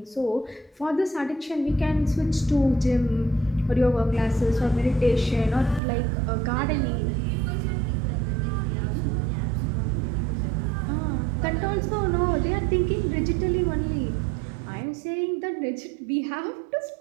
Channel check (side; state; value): left; drops out; at 5.8 s